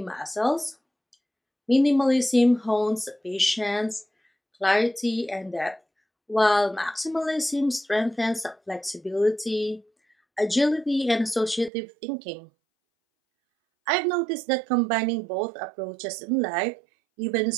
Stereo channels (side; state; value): left; drops out; at 11.7 s